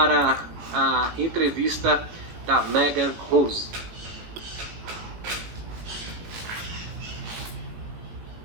a entrevista da Megan Rose.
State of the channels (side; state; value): left; late; 18 ms